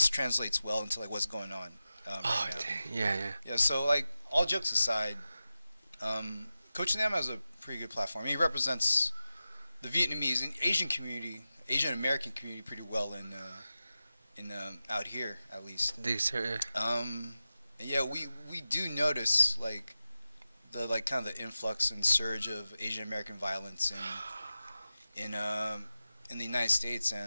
translates well into like what's going on. Yeah. So like all jokes aside, Coach Nam has a pretty good platform. I mean, he represents the Vietnamese and Asian community, Asian American community, pretty well in out here at least. We do notice like the kind of the influx and surge of Asian American violence in the United States,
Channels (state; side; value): inverted; both; correlation -0.93